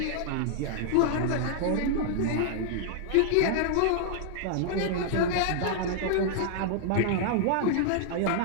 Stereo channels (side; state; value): both; different; correlation -0.01